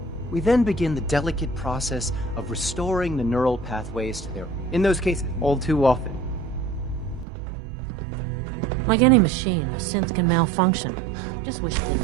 We then begin the delicate process of restoring the neural pathways to their... In those cases, all too often. Like any machine, a synth can malfunction. Just wish it didn't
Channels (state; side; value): drops out; left; at 7.2 s